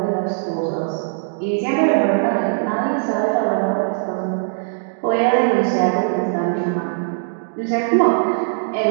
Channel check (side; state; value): left; silent; digital silence